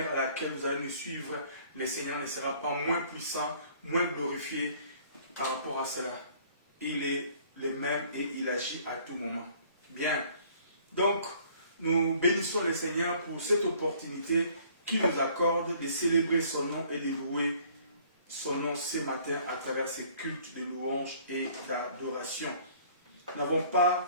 à laquelle vous allez nous suivre, le Seigneur ne sera pas moins puissant, moins glorifié par rapport à cela. Il est le même et il agit à tout moment. Bien. Donc, nous bénissons le Seigneur pour cette opportunité qu'il nous accorde de célébrer son nom et de louer son nom ce matin à travers ces cultes de louange et d'adoration. Nous n'avons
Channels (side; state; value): both; inverted; correlation -0.56